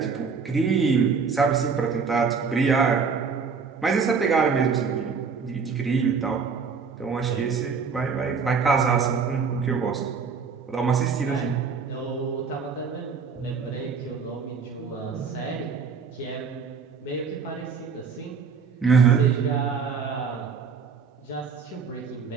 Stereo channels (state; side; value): quieter; left; 5.6 dB